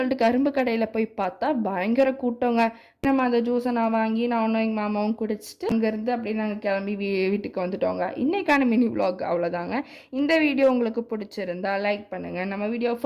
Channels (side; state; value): both; identical; correlation 1.00